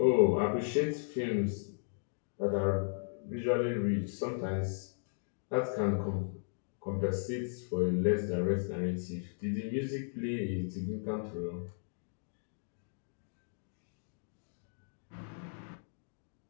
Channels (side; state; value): right; silent; digital silence